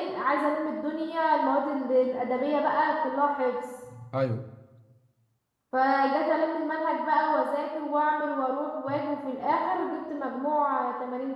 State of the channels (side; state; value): both; identical; correlation 1.00